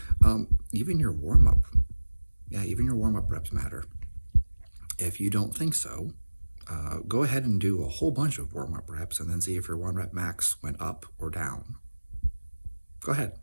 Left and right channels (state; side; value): inverted; both; correlation -1.00